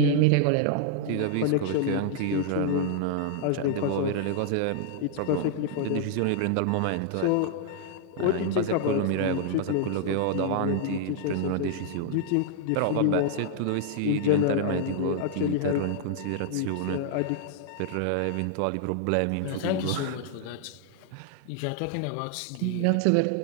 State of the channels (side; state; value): both; different; correlation 0.00